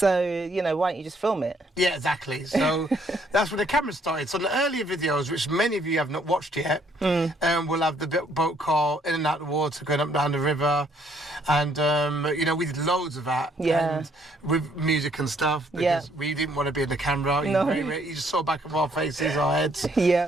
you know, why don't you just film it? Yeah, exactly. So that's when the camera started. So in the earlier videos, which many of you have not watched yet, we'll have the boat car in and out of the water, going up and down the river, and, you know, we did loads of that. Yeah. And with music and stuff, because we didn't want to be in the camera. No. You just saw back of our faces, our heads.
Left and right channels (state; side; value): normal; both; correlation 0.66